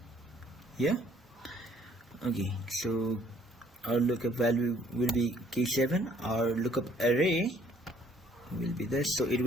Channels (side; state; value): both; normal; correlation 0.62